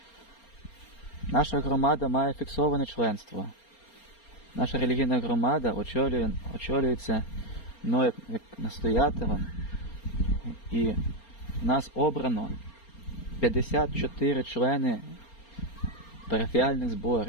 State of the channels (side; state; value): right; late; 4.3 ms